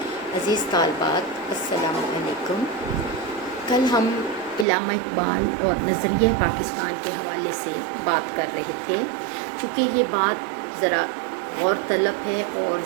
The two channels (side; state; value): left; drops out; at 4.7 s